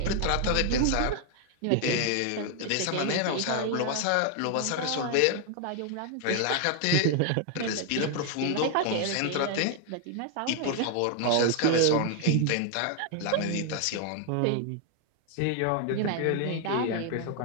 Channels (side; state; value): both; different; correlation 0.00